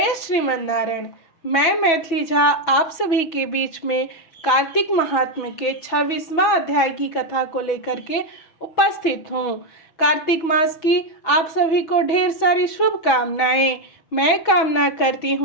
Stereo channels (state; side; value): late; right; 6.1 ms